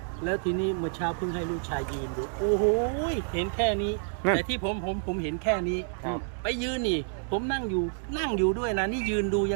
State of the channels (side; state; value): left; silent; digital silence